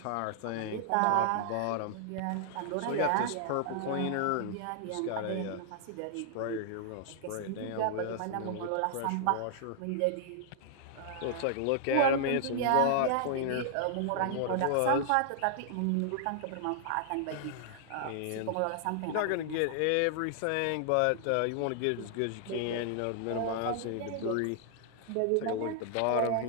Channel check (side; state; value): both; different; correlation -0.01